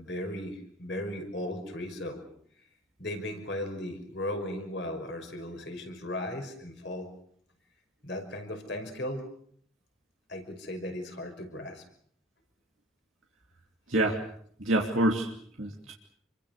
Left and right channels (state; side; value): normal; both; correlation 0.36